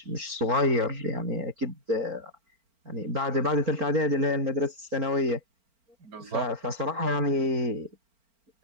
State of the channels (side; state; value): left; late; 4.4 ms